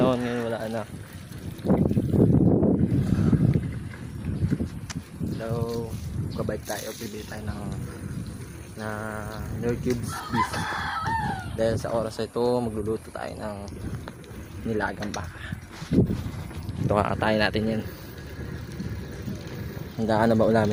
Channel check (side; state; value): both; identical; correlation 1.00